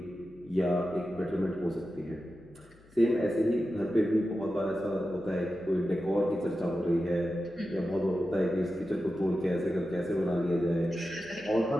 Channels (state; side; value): noise; left; hum, 27 dB below the sound